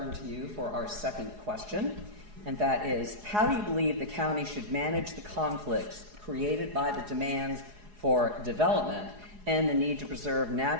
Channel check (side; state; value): left; late; 4.8 ms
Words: to you for our second question, and that is, how do you believe the county should manage the conflicts created by the demands for development and the need to preserve